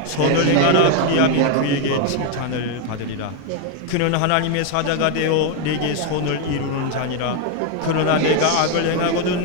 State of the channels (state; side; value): different; both; correlation 0.01